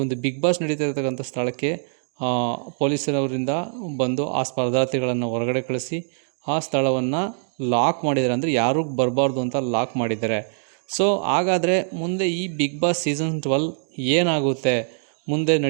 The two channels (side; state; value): left; silent; digital silence